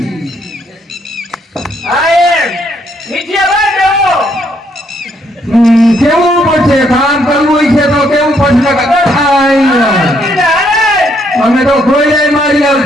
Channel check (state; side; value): normal; both; correlation 0.71